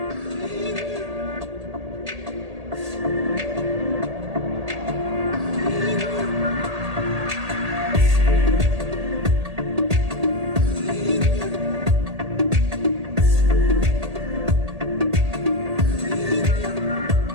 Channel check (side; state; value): left; late; 1.8 ms